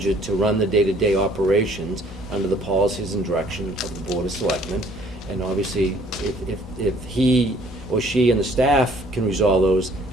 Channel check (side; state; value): both; normal; correlation 0.59